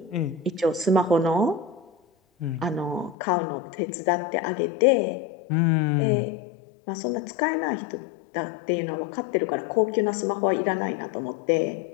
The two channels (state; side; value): drops out; right; at 3.2 s